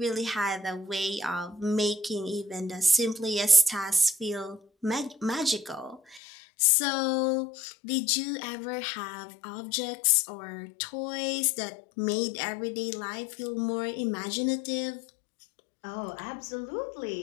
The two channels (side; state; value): right; drops out; at 6.2 s